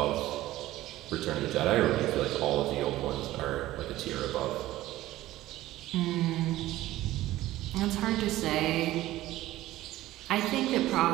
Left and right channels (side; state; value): left; quieter; 15.8 dB